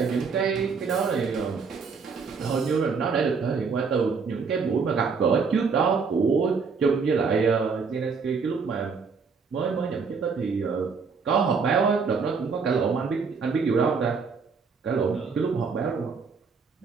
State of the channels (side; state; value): left; quieter; 5.2 dB